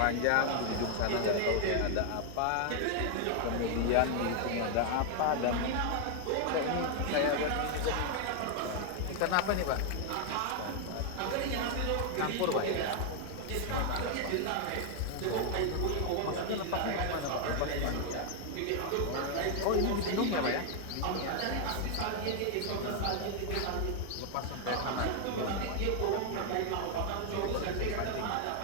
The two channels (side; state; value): both; different; correlation 0.00